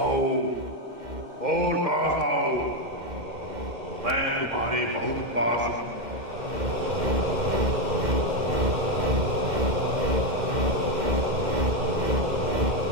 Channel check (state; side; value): late; left; 2.1 ms